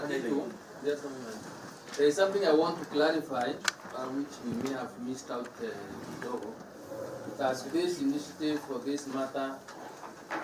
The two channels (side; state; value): both; identical; correlation 1.00